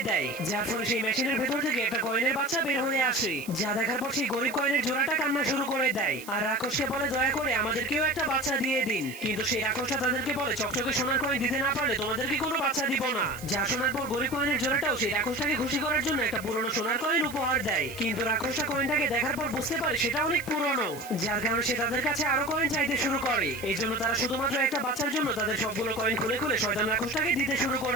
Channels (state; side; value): noise; right; hiss, 16 dB below the sound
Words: দেয়, যার ফলে সেই মেশিনের ভেতর থেকে একটা কয়েনের বাচ্চা বের হয়ে আসে। যা দেখার পর সেই গরিব কয়েনের জোড়াটা কান্না শুরু করে দেয় আর রাক্ষসকে বলে দয়া করে আমাদেরকেও একটা বাচ্চা দিয়ে দিন। কিন্তু সেই রাক্ষসটা তাদেরকে বলে চকচকে সোনার কয়েন দিতে না পারলে তোমাদেরকে কোনো বাচ্চা দিব না। যা শোনার পর গরিব কয়েনের জোড়াটাও সেই রাক্ষসটাকে খুশি করার জন্য একটা পুরনো সোনার কয়েন উপহার দেয়। কিন্তু রাক্ষসটা কয়েনটাকে দেখার পর বুঝতে পারে সেটা অনেক পুরনো, যার কারণে সে তাদের কাছে আরো কয়েন চাইতে শুরু করে। এই জন্য তারা শুধুমাত্র একটা বাচ্চার জন্য তাদের সবগুলো কয়েন খুলে খুলে শয়তান রাক্ষসটাকে দিতে শুরু